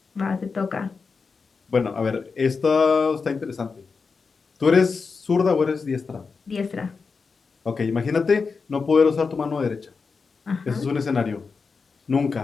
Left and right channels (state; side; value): quieter; right; 4.9 dB